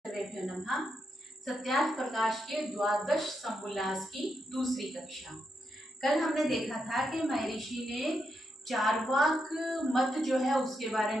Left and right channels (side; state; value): both; normal; correlation 0.83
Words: सर्वेभ्यो नमः। सत्यार्थ प्रकाश के द्वादश समुल्लास की दूसरी कक्षा। कल हमने देखा था कि महर्षि ने चार्वाक मत जो है उसके बारे